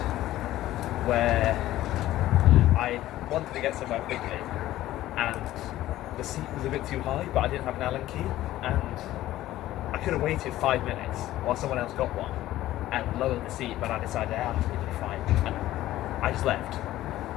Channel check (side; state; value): right; quieter; 14.7 dB